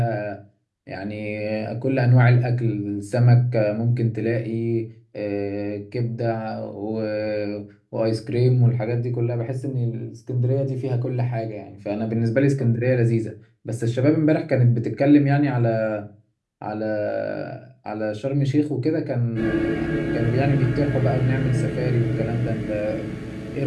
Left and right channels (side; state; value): both; identical; correlation 1.00